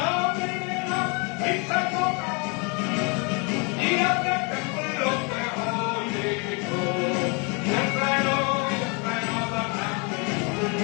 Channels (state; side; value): quieter; right; 32.8 dB